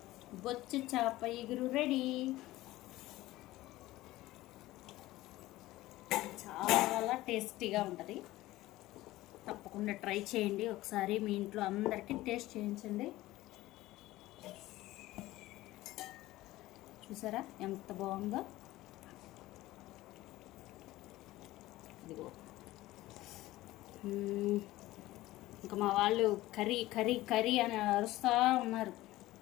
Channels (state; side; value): quieter; right; 17.3 dB